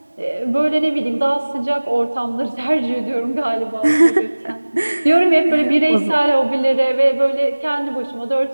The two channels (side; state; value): both; inverted; correlation -1.00